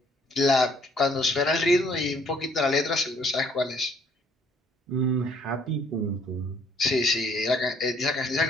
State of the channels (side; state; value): both; normal; correlation 0.63